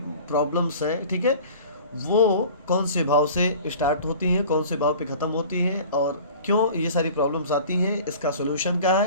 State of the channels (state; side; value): inverted; both; correlation -0.43